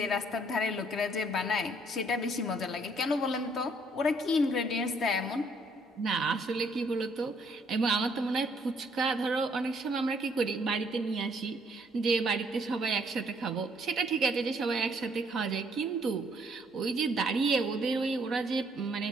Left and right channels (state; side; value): normal; both; correlation 0.67